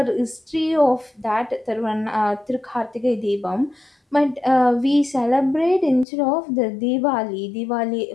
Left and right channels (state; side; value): drops out; right; at 6.1 s